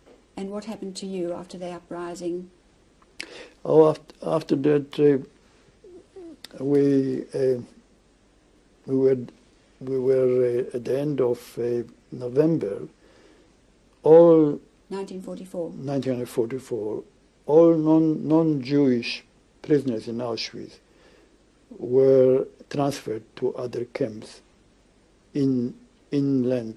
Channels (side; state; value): both; identical; correlation 1.00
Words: and what happened to you after the uprising? Oh, after that, we were at the end of November. All 1944. All non-Jewish prisoners in Auschwitz were transferred to other camps